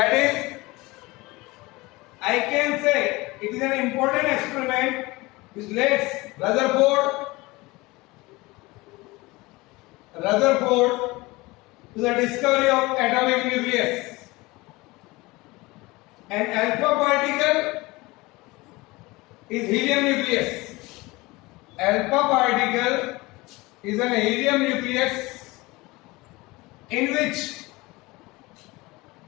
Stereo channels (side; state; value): right; quieter; 22.1 dB